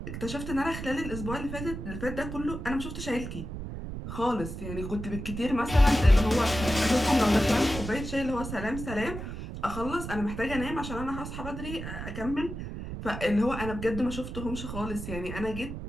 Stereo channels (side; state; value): right; noise; rumble, 7 dB below the sound